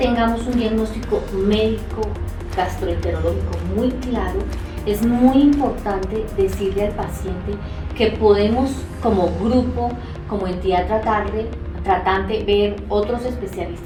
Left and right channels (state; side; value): identical; both; correlation 1.00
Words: un diagnóstico médico gastroenterológico muy claro, es muy importante decirle al paciente que podemos como grupo, como entidad tratante, ver otros